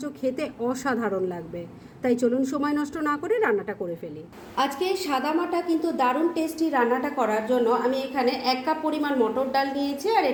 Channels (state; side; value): identical; both; correlation 1.00